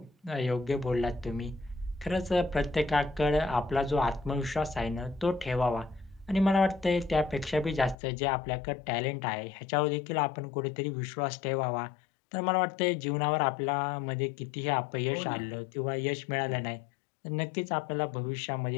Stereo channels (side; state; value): right; drops out; at 8.0 s